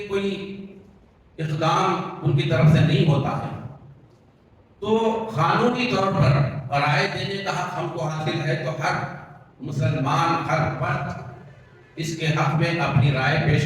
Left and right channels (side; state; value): both; identical; correlation 1.00